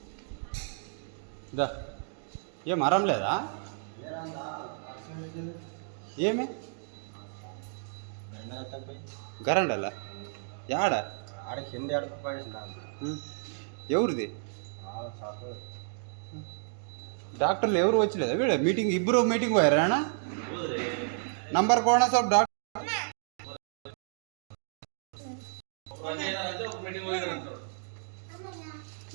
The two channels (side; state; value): left; silent; digital silence